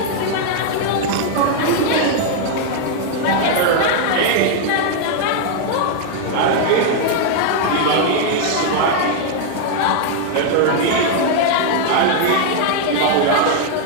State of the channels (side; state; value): both; different; correlation 0.00